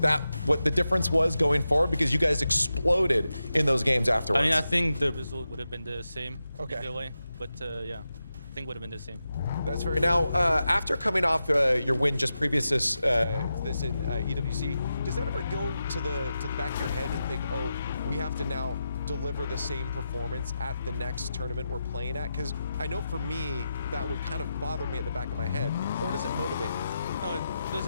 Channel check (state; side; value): inverted; both; correlation -0.90